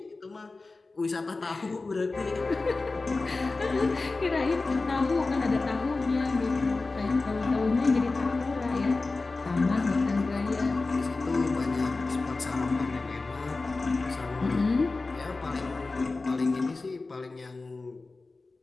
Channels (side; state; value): right; quieter; 3.6 dB